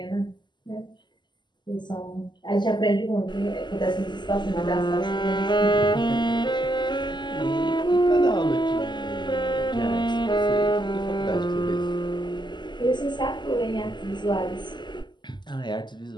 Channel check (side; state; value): right; late; 0.21 ms